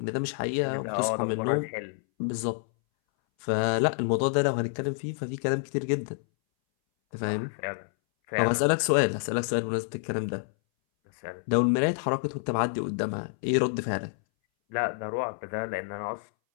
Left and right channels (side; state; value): right; silent; 59 dB below the other